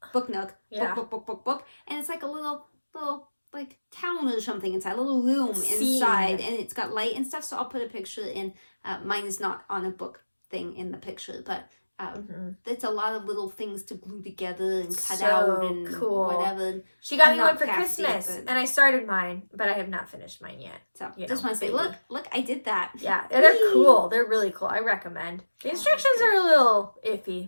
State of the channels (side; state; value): both; inverted; correlation -1.00